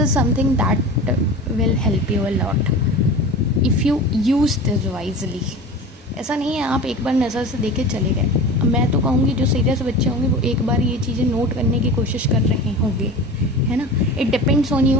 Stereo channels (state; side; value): normal; both; correlation 0.34